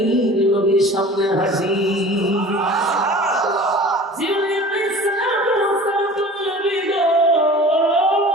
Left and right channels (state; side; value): normal; both; correlation 0.42